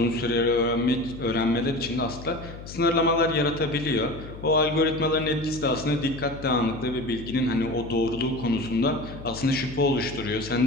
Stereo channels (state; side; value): noise; left; hum, 13 dB below the sound